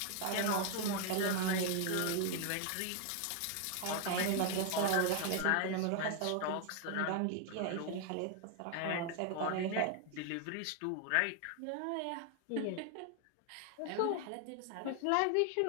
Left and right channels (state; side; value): different; both; correlation 0.00